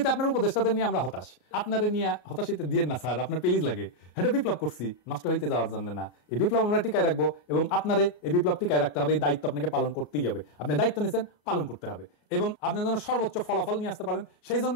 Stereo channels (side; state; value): right; late; 34 ms